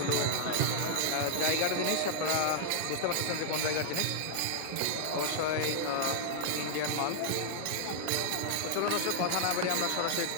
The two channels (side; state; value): both; different; correlation -0.01